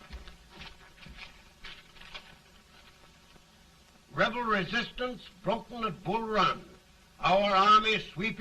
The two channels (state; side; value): identical; both; correlation 1.00